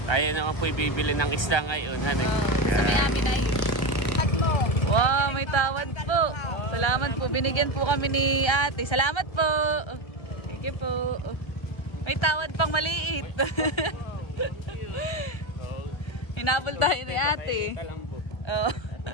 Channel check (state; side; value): late; right; 1.3 ms